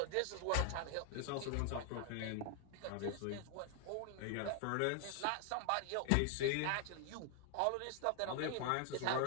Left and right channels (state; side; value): different; both; correlation 0.00